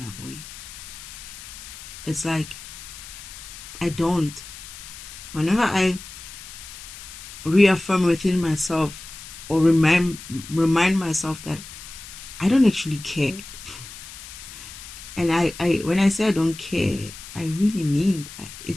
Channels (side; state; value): left; noise; hiss, 14 dB below the sound